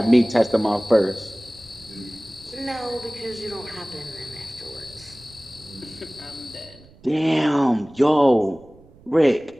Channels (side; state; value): right; noise; rumble, 26 dB below the sound